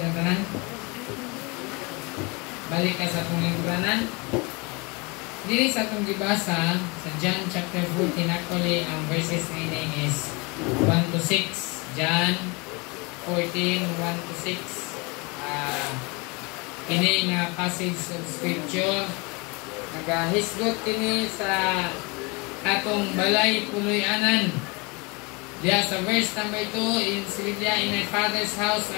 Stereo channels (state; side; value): quieter; right; 28.3 dB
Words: tanan. Balik ka sa atong lingkuranan. Dili sa atong gibasa sa John chapter 14, actually ang verses na is 1 to 6. John 14, 1 to 6. Kini nga passage of scripture nagahisgot kini sa atong balay puloy-anan. Diya sa verse number 2 in Silvia, in my Father's house